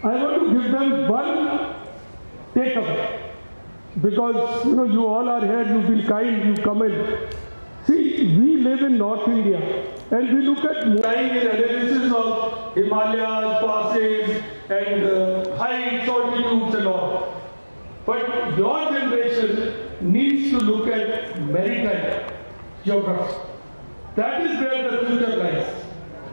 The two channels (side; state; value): both; inverted; correlation -1.00